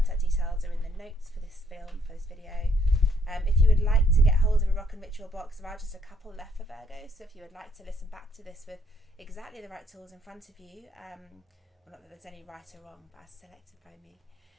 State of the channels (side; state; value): both; normal; correlation 0.71